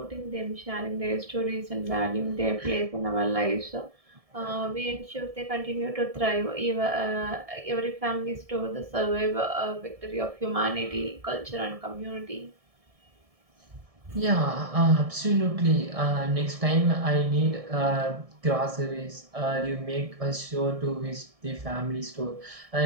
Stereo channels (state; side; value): late; left; 1.7 ms